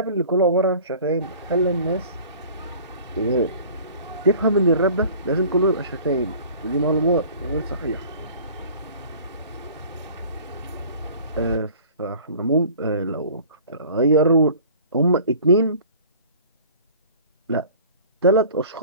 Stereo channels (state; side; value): inverted; both; correlation -0.46